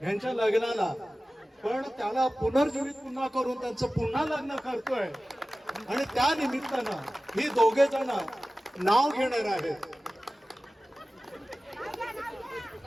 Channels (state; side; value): normal; both; correlation 0.96